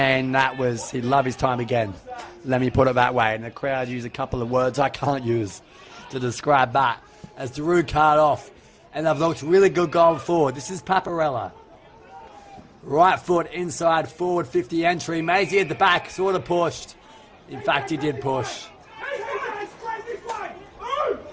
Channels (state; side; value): identical; both; correlation 1.00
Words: that was, he'd love his time again. Let me put it that way. And the crowd use a couple of words I can't use to describe that as Daru card off. And they've looked really good going forward. This is Paparella. Right foot inside, forward 50 entry. Maisie at the back, sort of pushed. In fact, he did push.